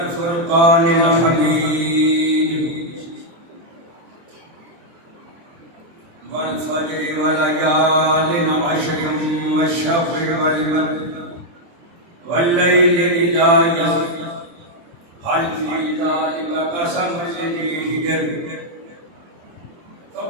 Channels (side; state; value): left; late; 24 ms